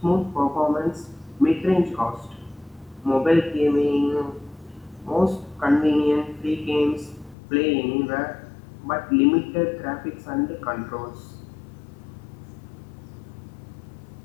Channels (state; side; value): drops out; right; at 7.4 s